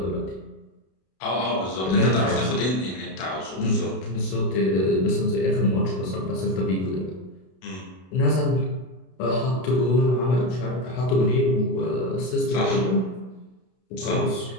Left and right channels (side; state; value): right; late; 32 ms